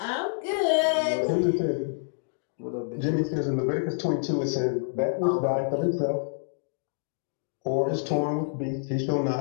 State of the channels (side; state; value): right; silent; digital silence